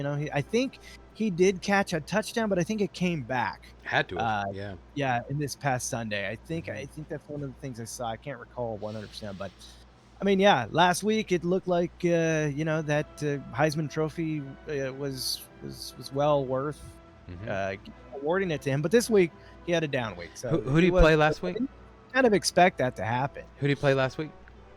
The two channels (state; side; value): identical; both; correlation 1.00